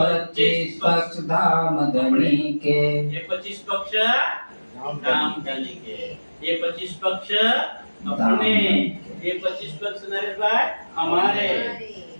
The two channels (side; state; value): both; inverted; correlation -1.00